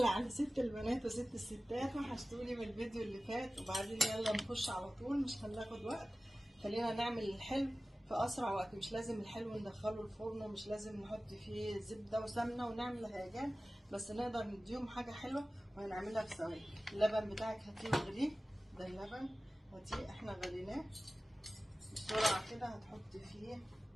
على ست البنات وست الستات، وحشتوني من الفيديو اللي فات. وبعدين يلا نخش على طول، مش هناخد وقت. خلينا نعمل الحلو في اسرع وقت. مش لازم الحلو ندخله الفرن، ومش لازم نحط فيه زبده وسمنه ونعمل هيجان، بس نقدر نديهم حاجه حلوه وهنعملها في ثواني. اللبن بتاعك هاتيه واغليه. ده اللبن هاتيه احنا غليناه بسرعه كده. هتحطي فيه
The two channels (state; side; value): normal; both; correlation 0.97